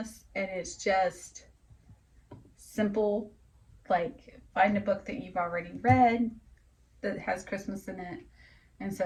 and it's just simple, like find a book that you've already read that has Christmas in it. And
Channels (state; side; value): identical; both; correlation 1.00